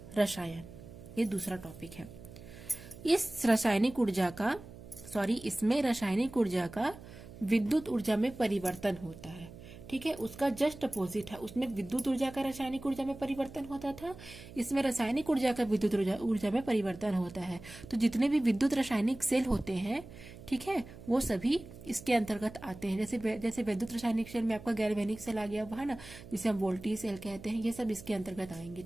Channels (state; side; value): noise; right; hum, 16 dB below the sound